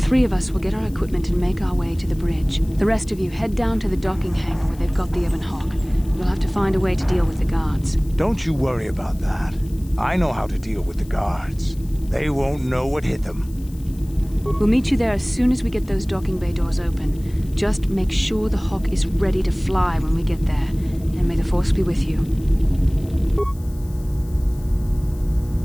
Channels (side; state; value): left; noise; hiss, 24 dB below the sound